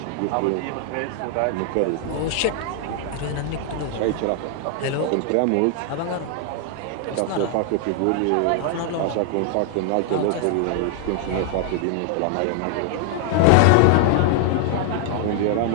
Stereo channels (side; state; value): both; different; correlation 0.00